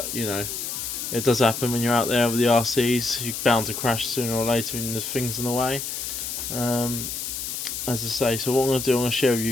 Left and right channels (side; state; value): left; noise; hiss, 5 dB below the sound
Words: you know, it does happen when you're out there with the RCs. You're bound to crash sooner or later when there's things in the way. As I say, so what I'm going to do, I'm going to share with